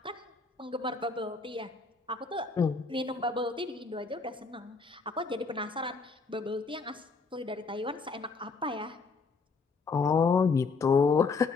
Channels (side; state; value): right; quieter; 4.4 dB